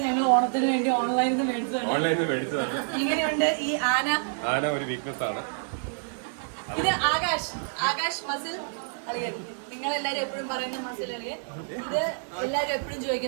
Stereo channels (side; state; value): left; silent; digital silence